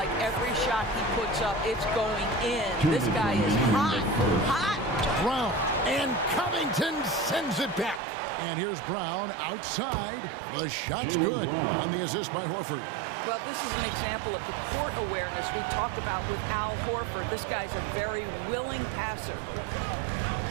every shot he puts up, it's going in. This guy is hot, hot. Brown, and Covington sends it back. And here's Brown outside. The shot's good on the assist by Horford. Well, this is an example of the court awareness we talked about with Al Horford. This guy's a very willing passer.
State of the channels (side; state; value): left; drops out; at 8.0 s